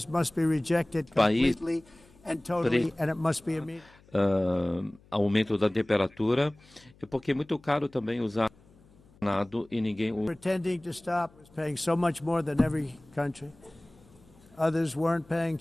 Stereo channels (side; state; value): left; noise; hum, 28 dB below the sound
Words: must be rejected completely and totally, and it must be immediate. Aumento da temperatura, porque é muito caro também usar nada e ninguém usa. Pretending to stop is paying so much more than every country. Others weren't paying.